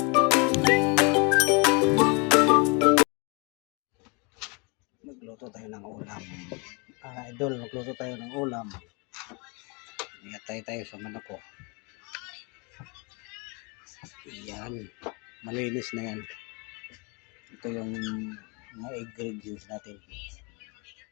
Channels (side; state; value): right; quieter; 31.1 dB